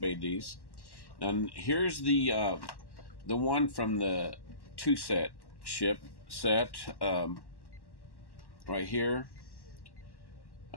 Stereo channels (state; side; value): late; right; 1.1 ms